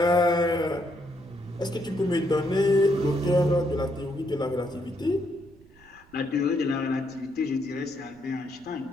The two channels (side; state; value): right; noise; rumble, 27 dB below the sound